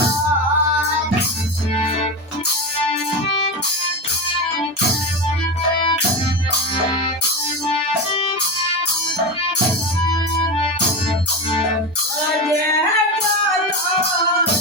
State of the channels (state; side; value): normal; both; correlation 0.19